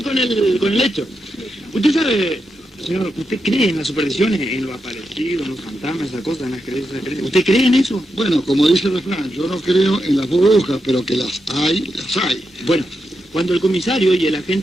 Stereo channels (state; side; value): normal; both; correlation 0.86